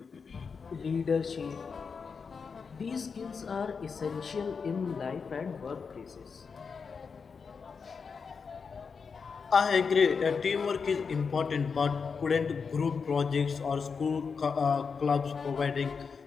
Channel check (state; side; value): quieter; right; 5.5 dB